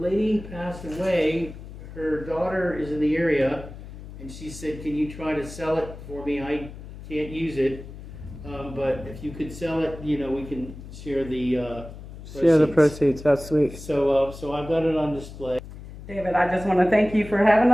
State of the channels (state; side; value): noise; left; hum, 14 dB below the sound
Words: passed away. Her daughter is in the area, and she said, can you try to sell it for me? I can't use it, but if you could sell it, we can share the proceeds. That's sweet. So I've got it on display. David, I just want to thank you for having